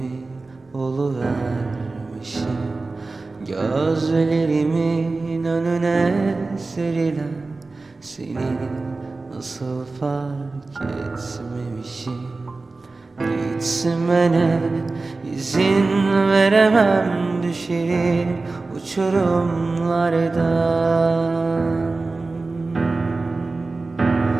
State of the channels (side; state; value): left; quieter; 3.6 dB